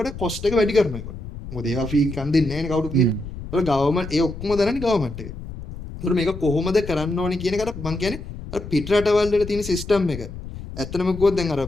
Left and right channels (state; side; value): noise; left; rumble, 10 dB below the sound